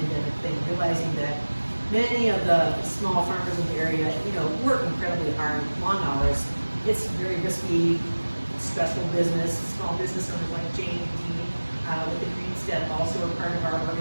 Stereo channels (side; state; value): both; inverted; correlation -1.00